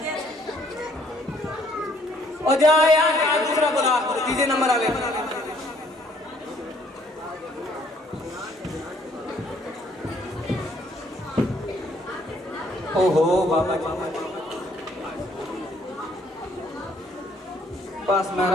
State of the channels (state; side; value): normal; both; correlation 0.64